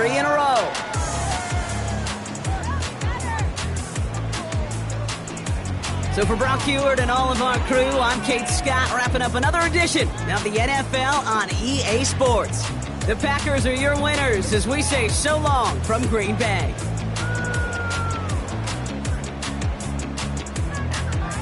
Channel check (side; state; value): both; identical; correlation 1.00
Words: in a row. So for Brock Heward and all of our crew, I'm Kate Scott, wrapping up another edition of the NFL on EA Sports. The Packers are your winners as we say so long from Green Bay.